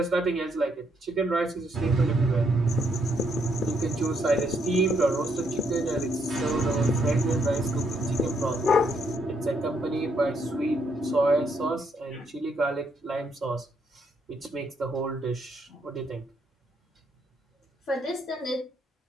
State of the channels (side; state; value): both; normal; correlation 0.74